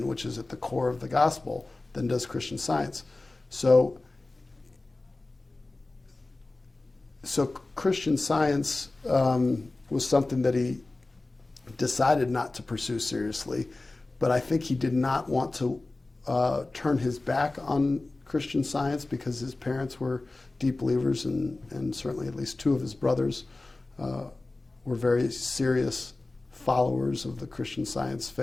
which is at the core of the gospel, than does Christian Science. So Christian Science was something that he decided not to pursue seriously, but I think he did not want to turn his back on Christian Science because his parents were deep believers, and certainly at least two of his brothers were very serious followers of the Christian Science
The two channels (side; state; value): right; quieter; 3.1 dB